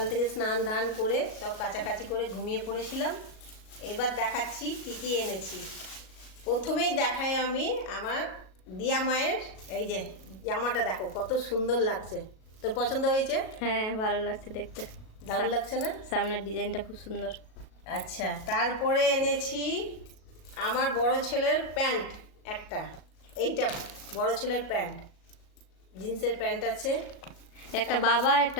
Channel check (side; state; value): right; late; 37 ms